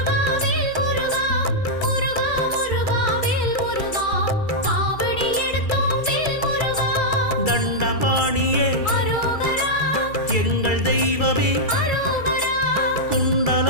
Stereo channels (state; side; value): late; right; 2.3 ms